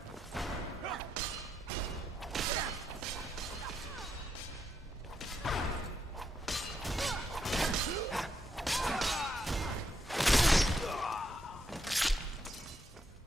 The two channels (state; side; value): normal; both; correlation 0.79